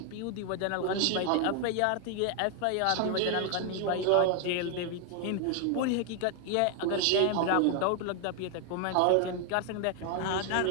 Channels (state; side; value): different; both; correlation 0.00